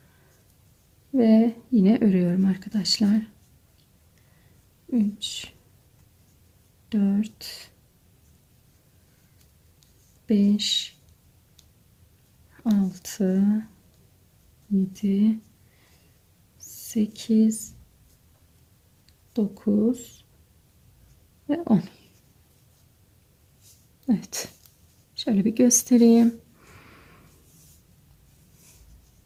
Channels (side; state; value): both; identical; correlation 1.00